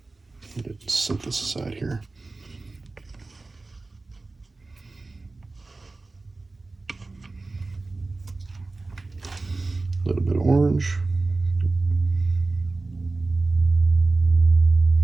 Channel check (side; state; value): left; quieter; 3.4 dB